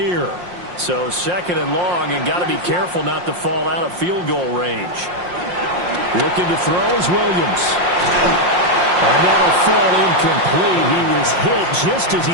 So second and long, and got to be careful not to fall out of field goal range. Looking to throw is Williams. And that'll fall incomplete. He was hit just as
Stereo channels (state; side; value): late; left; 5.6 ms